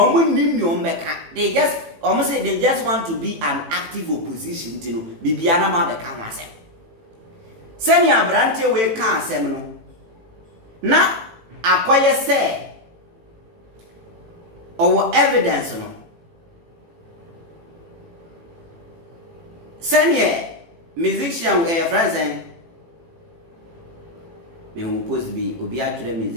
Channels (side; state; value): left; late; 18 ms